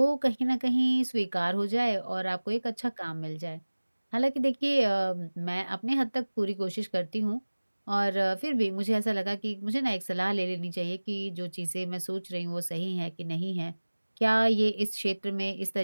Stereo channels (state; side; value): inverted; both; correlation -1.00